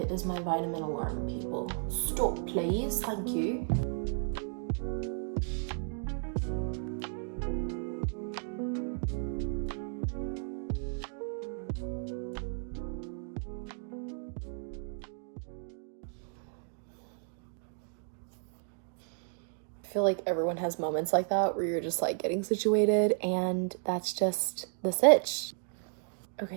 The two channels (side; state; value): left; silent; 55 dB below the other